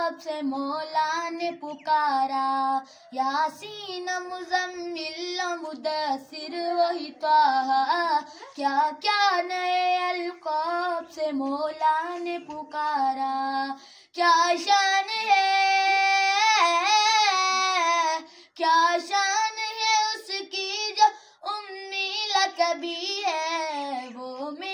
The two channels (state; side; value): identical; both; correlation 1.00